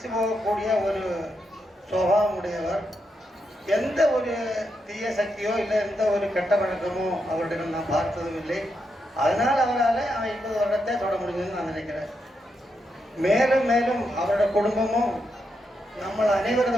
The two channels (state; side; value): normal; both; correlation 0.83